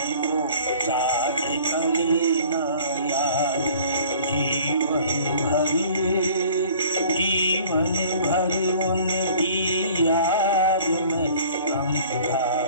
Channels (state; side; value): inverted; both; correlation -0.50